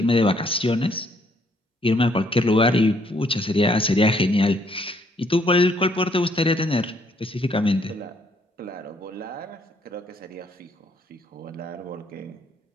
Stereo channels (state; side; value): normal; both; correlation 0.67